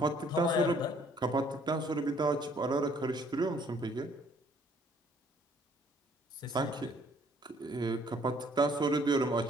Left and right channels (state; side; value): normal; both; correlation 0.62